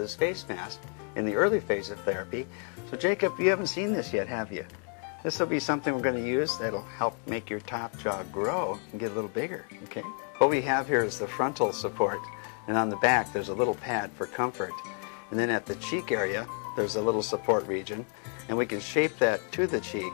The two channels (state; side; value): quieter; right; 39.9 dB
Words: face mask in the early phase of therapy. So Jacob, you haven't seen this yet, have you? This will be something we're going to use that'll help make your top jaw grow and get a little bigger, okay? What we have here is the frontal support, and on the back there's a little pad for comfort. And then at the cheek area, there's a little support region, and we can shape that to the cheek